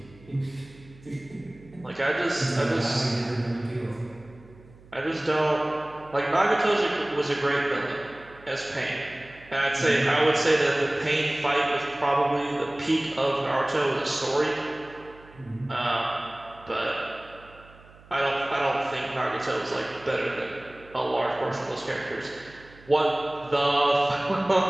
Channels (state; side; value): noise; right; hum, 24 dB below the sound